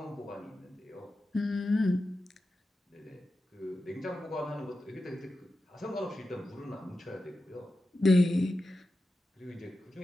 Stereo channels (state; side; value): normal; both; correlation 0.91